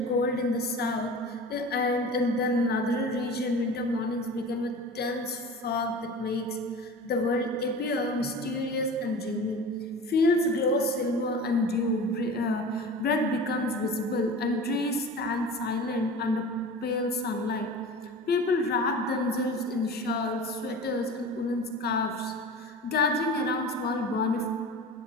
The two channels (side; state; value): both; normal; correlation 0.36